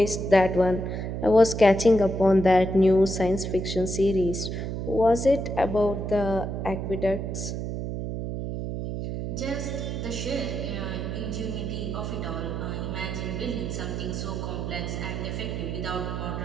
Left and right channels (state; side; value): noise; right; hum, 4 dB below the sound